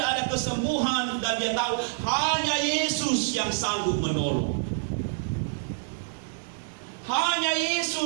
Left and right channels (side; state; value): left; silent; digital silence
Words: ada kesembuhan. Dan dia tahu hanya Yesus yang sanggup menolong. Hanya